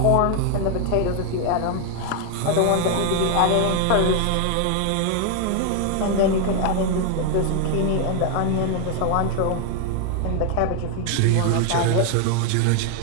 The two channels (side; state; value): both; different; correlation 0.00